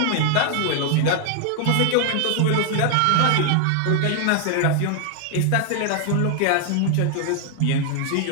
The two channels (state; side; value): different; both; correlation 0.00